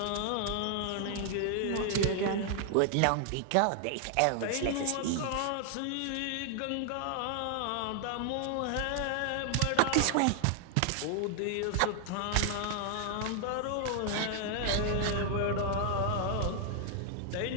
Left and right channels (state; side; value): different; both; correlation 0.00